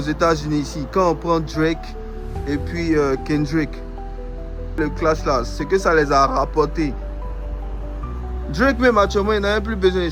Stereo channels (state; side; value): identical; both; correlation 1.00